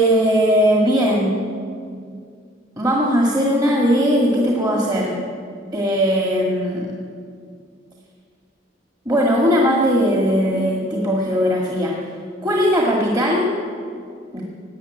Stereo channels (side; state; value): both; normal; correlation 0.56